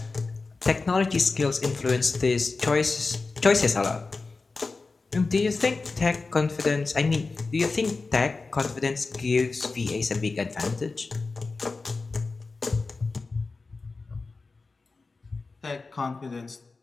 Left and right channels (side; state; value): right; quieter; 3.9 dB